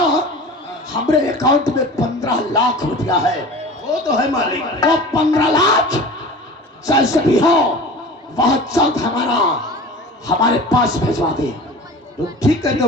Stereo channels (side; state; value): both; normal; correlation 0.38